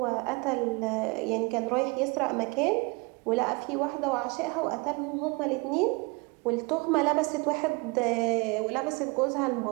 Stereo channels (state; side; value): quieter; left; 28.1 dB